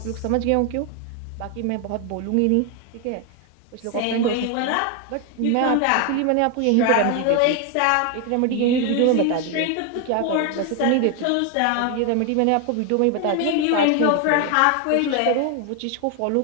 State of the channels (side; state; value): both; different; correlation 0.01